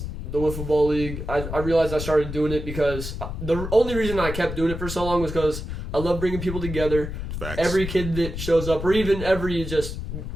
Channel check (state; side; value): noise; left; rumble, 6 dB below the sound